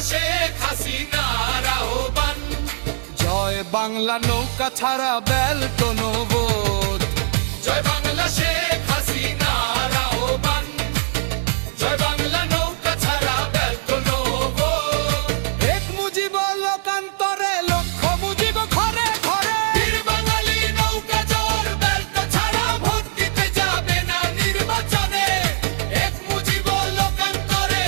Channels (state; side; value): silent; left; 56 dB below the other